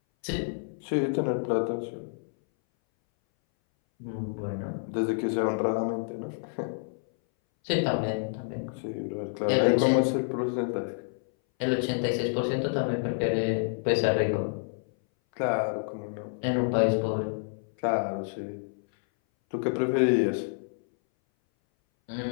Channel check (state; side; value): silent; right; 59 dB below the other